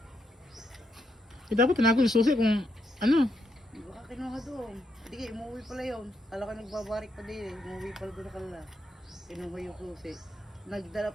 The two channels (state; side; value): normal; both; correlation 0.79